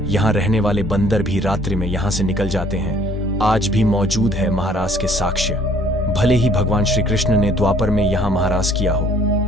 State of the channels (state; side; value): normal; both; correlation 0.58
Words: यहाँ रहने वाले बंदर भी रात्रि में यहाँ से निकल जाते हैं। आज भी मौजूद है महाराज के साक्ष्य। भले ही भगवान श्री कृष्ण ने द्वापर में यहाँ महाराज किया हो,